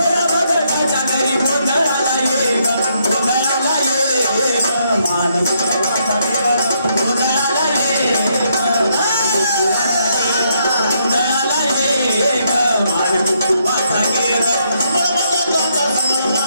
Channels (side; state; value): both; inverted; correlation -0.75